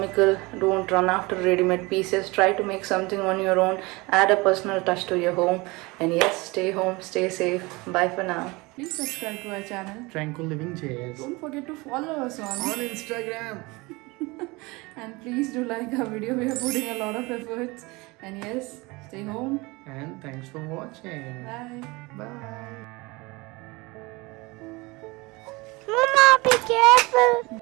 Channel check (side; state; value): left; quieter; 24.2 dB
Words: Don't run after ready-made pieces. Try to make something on your own. Add a personal touch to your home. And yes, stay home, stay safe. Bye for now. Please subscribe to our channel TranquillivingJS Don't forget to follow us on Instagram. and please do like our video. We are putting a lot of efforts. And yes, stay home. And thanks for watching. Bye. Bye. Mama, be careful.